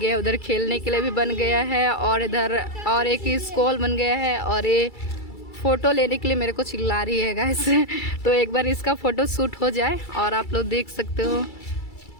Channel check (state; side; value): late; right; 2.3 ms